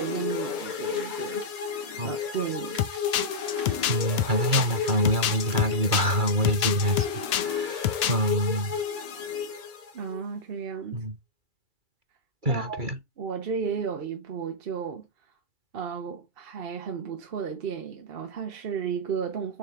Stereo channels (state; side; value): late; left; 1.8 ms